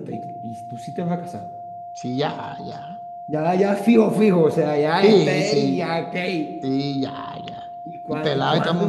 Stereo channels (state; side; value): identical; both; correlation 1.00